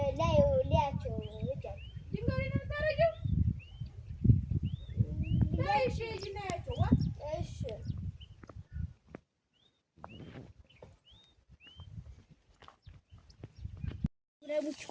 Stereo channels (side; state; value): both; identical; correlation 1.00